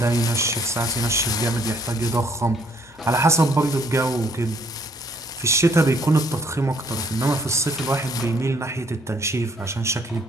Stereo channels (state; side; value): normal; both; correlation 0.65